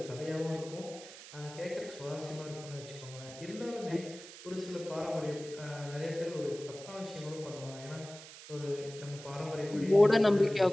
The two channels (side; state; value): right; noise; hiss, 15 dB below the sound